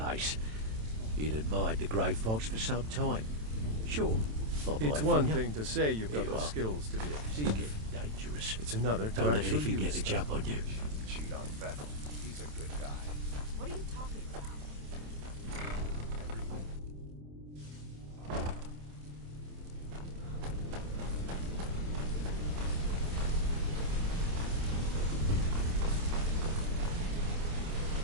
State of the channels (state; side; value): late; left; 27 ms